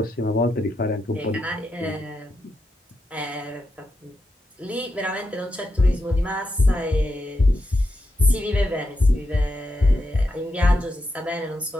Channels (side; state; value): both; normal; correlation 0.85